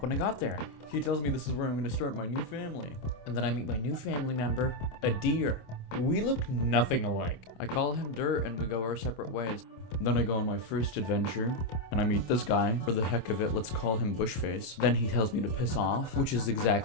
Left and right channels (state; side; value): late; right; 26 ms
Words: when I got there. He tells me this is where I'm gonna start my new family. And then I meet my new family member, a deer. We look nothing alike. I call him Dirt and we go our separate ways. Then I go on my first adventure, and I meet this guy. For the heck of it, let's call him Bushface. Then he tells me to piss off, which is